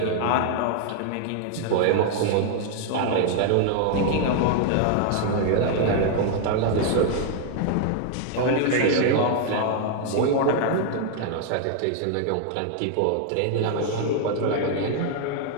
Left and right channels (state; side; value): different; both; correlation 0.00